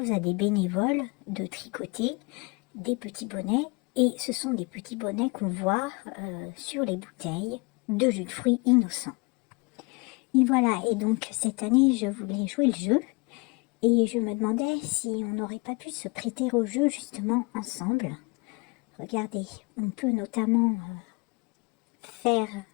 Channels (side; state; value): right; quieter; 29.3 dB